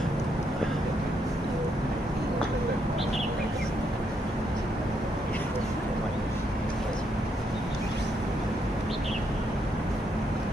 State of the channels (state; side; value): normal; both; correlation 0.76